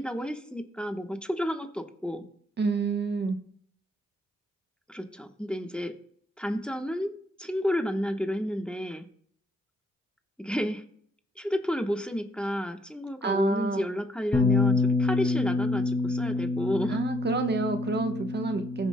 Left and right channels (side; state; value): both; normal; correlation 0.70